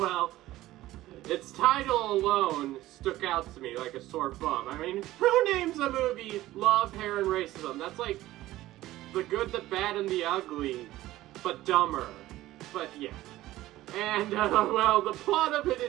its title alone stuck out to me like a sore thumb. I mean, who names a movie Love, Hair, and Racism? That's The Good, the Bad, and the Ugly, but dumber. But, yeah. And, well, the plot of it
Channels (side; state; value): left; quieter; 15.9 dB